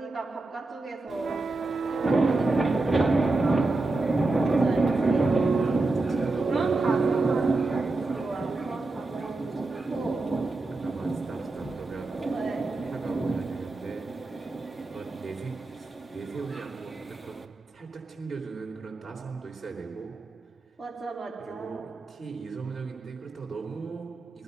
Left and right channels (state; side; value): quieter; left; 3.2 dB